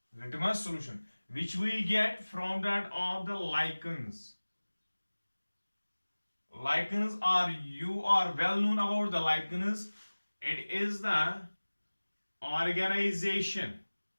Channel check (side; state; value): both; inverted; correlation -1.00